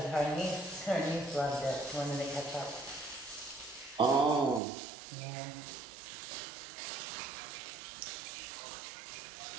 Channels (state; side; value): drops out; left; at 4.6 s